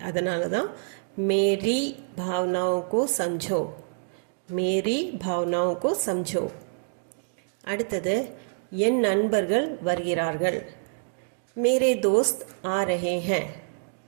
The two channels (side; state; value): left; silent; digital silence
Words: அதனால தான் மேரி பாவனாओं को समझो. மேரி பாவனாओं को समझो. அடுத்தது என் நண்பர்கள் வருகிறார்கள். மேரே தோஸ்த் ஆ ரஹே ஹேன்.